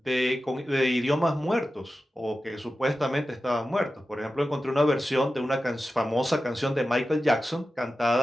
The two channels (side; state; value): both; normal; correlation 0.93